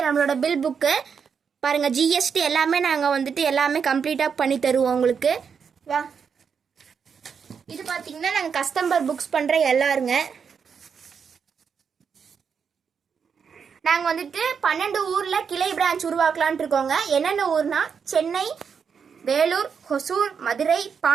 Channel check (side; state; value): left; quieter; 6.5 dB